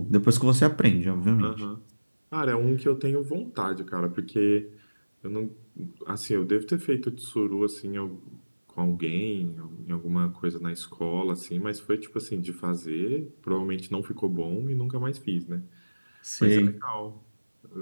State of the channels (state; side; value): inverted; both; correlation -1.00